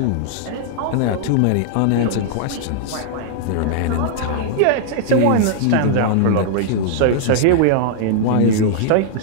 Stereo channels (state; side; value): different; both; correlation -0.01